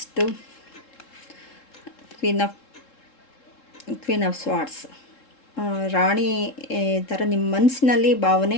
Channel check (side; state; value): right; late; 3.7 ms